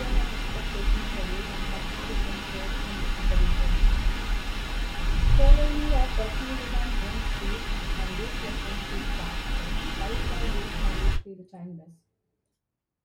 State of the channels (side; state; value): both; identical; correlation 1.00